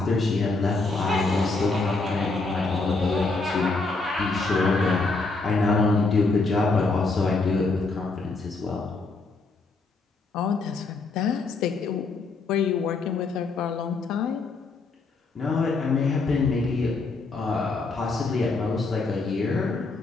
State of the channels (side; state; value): right; quieter; 3.7 dB